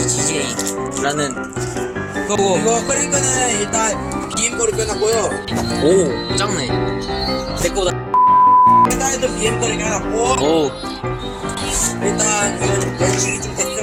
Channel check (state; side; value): identical; both; correlation 1.00